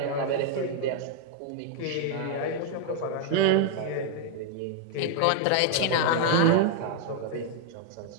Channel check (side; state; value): both; different; correlation 0.00